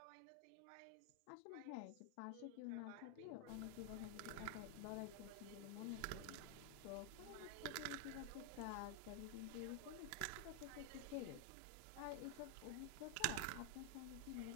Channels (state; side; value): different; both; correlation 0.00